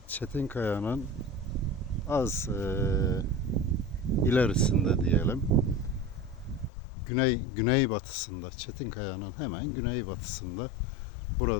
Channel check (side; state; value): right; drops out; at 6.7 s